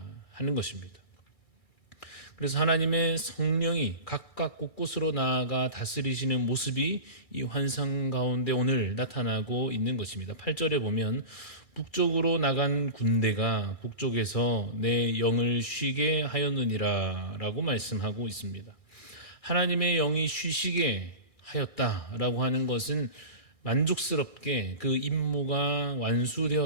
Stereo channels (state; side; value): late; right; 2.3 ms